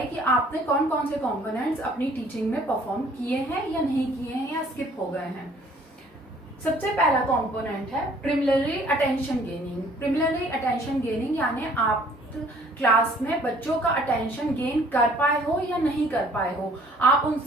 कि आपने कौन कौन से कंपोनेंट्स अपनी टीचिंग में परफॉर्म किए हैं या नहीं किए हैं या स्किप हो गए हैं। सबसे पहला कंपोनेंट है preliminary attention gaining. Preliminary attention gaining यानी आप क्लास में बच्चों का अटेंशन गेन कर पाए हो या नहीं कर पाए हो, आप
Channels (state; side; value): normal; both; correlation 0.57